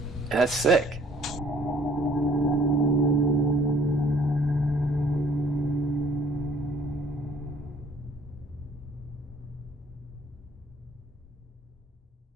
and that's sick.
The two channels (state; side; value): normal; both; correlation 0.56